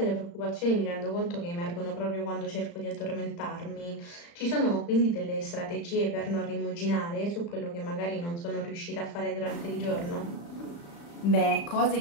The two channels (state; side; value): late; right; 35 ms